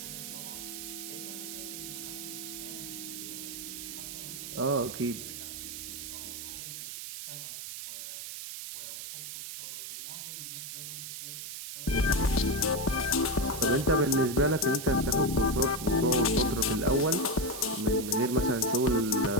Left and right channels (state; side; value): noise; right; hiss, 8 dB below the sound